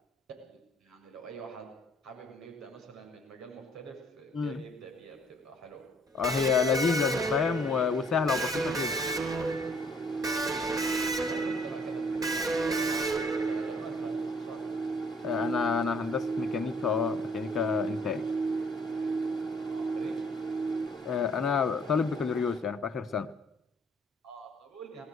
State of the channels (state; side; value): normal; both; correlation 0.62